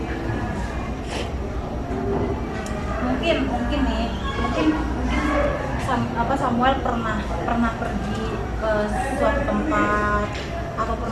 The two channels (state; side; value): identical; both; correlation 1.00